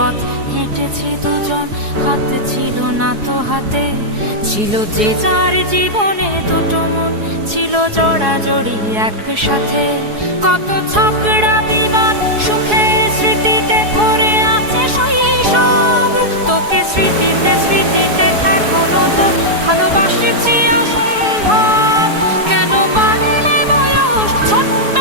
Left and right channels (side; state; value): left; late; 4.7 ms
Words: হেঁটেছি দুজন, হাতে ছিল না তো হাতে, ছিল যে যার জীবনে দুটো মন, ছিল জড়াজড়ি একসাথে। কত ঝগড়া বিবাদ সুখের স্মৃতিতে ভরে আছে শৈশব, তোকে স্মৃতিতে স্মৃতিতে এখনো তো ভালোবাসছি অসম্ভব। কেন বাড়লে বয়স